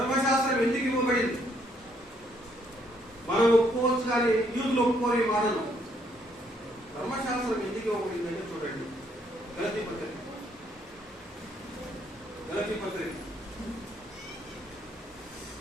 ఎందుకు ఇవ్వబడింది? మనం ఒప్పుకోవచ్చు, కానీ యూదులు ఒప్పుకోని మాటలు. ధర్మశాస్త్రం ఎందుకు ఇవ్వబడింది అంటే చూడండి, గలతీ పత్రిక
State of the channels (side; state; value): both; normal; correlation 0.70